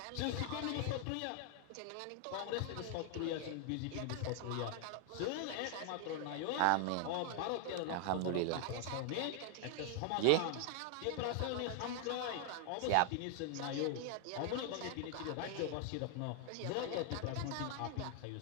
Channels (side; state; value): both; different; correlation 0.00